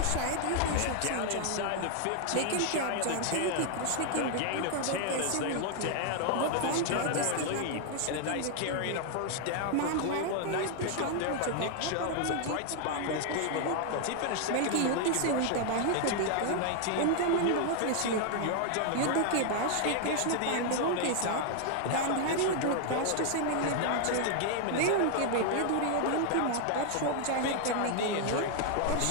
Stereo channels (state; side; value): different; both; correlation 0.00